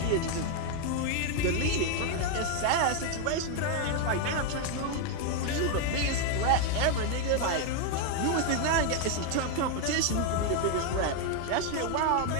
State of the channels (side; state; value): both; different; correlation 0.01